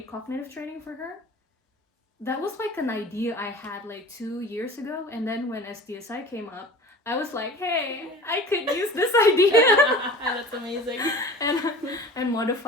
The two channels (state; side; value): normal; both; correlation 0.40